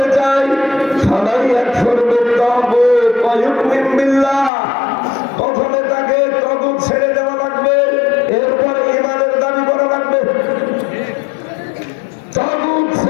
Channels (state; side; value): drops out; right; at 4.5 s